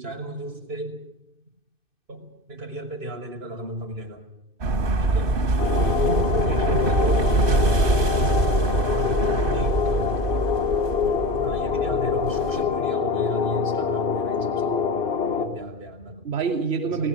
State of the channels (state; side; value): late; left; 2.6 ms